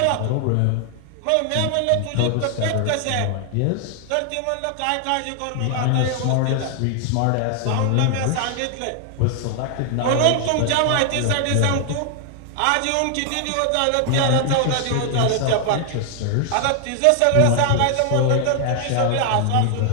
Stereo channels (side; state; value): both; different; correlation 0.00